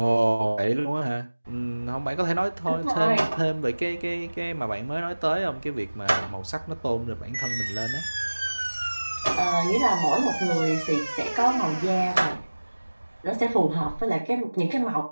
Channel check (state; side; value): inverted; both; correlation -1.00